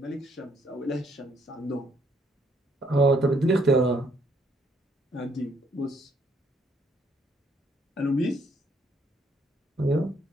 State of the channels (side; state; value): both; normal; correlation 0.69